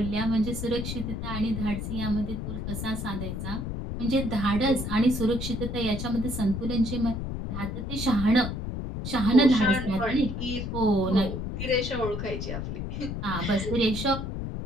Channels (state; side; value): noise; left; rumble, 4 dB below the sound